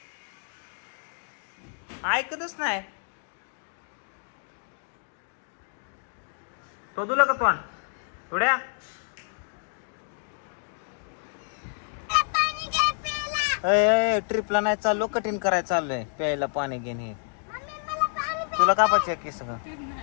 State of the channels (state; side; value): silent; right; 59 dB below the other